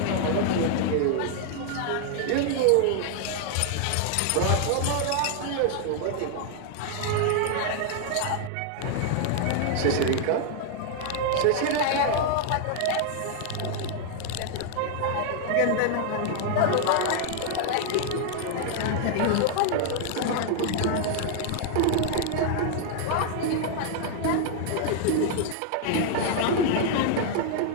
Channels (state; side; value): different; both; correlation 0.00